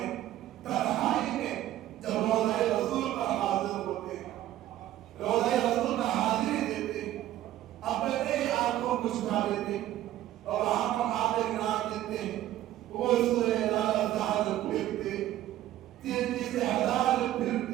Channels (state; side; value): quieter; left; 13.5 dB